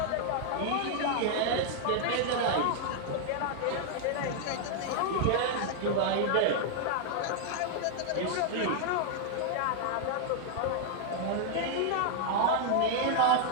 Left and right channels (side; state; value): both; different; correlation 0.00